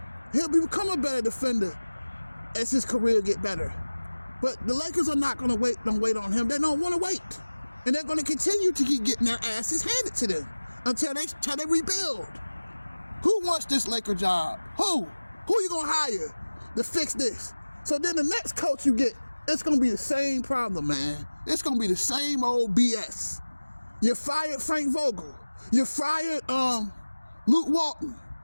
He'll become a better defender as his career get better. But the Lakers are not going to wait. Don't wait on him. They don't want to wait, and they're going to continue to keep getting their asses handed to them until they rebuild. Who wants this Laker job? Who you going to hire to fix this? So then the next coach you get, it's going to be the same problem, man. It's going to be the same old BS. You fired Frank Vogel. You fired Luke Walton.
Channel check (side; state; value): both; inverted; correlation -1.00